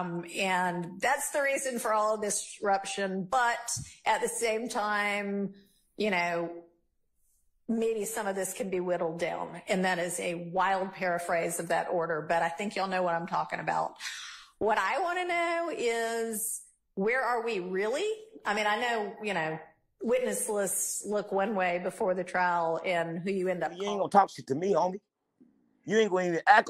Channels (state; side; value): identical; both; correlation 1.00